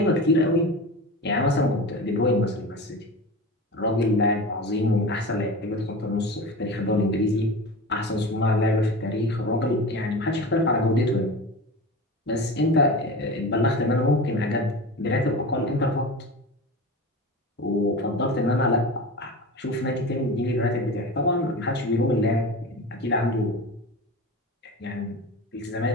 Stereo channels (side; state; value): both; normal; correlation 0.30